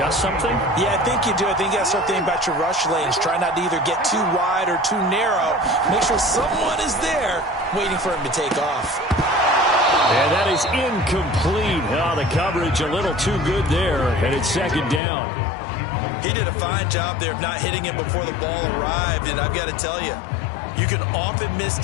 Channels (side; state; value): right; drops out; at 15.0 s